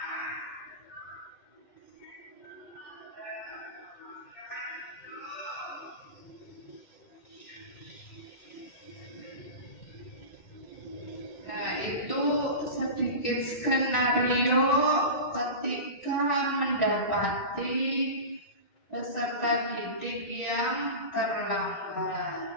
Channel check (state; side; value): late; right; 2.1 ms